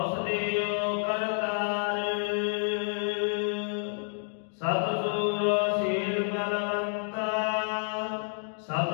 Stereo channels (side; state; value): right; silent; 58 dB below the other